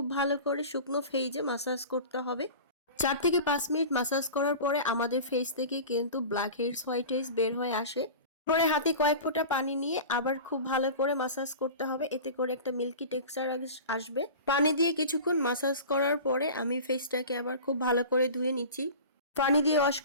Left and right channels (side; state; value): both; inverted; correlation -0.35